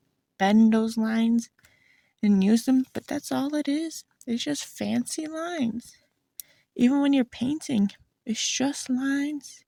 bend those lines and use them, but that's all it is. It's just fancy lines. Even when you're painting, it's just lines.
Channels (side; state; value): both; identical; correlation 1.00